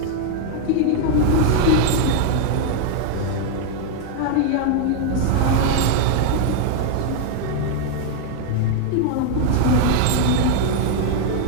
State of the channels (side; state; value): both; different; correlation 0.01